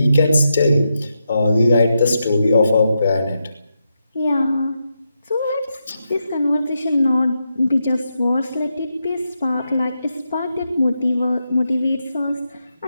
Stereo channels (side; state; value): both; inverted; correlation -0.85